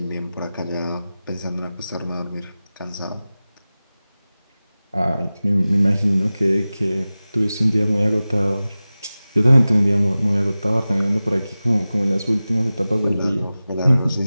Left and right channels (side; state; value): both; inverted; correlation -0.96